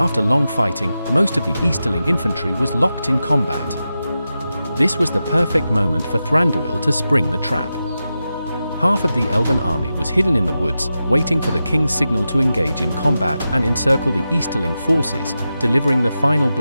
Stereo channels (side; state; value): both; inverted; correlation -0.91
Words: long fighting, most of the Easterling infantry was locked in combat. This was the perfect moment for Thranduil to spring the trap. Half of the Elven army was hidden in the woods, waiting for the king's signal to engage in combat and encircle the Easterling forces, delivering the final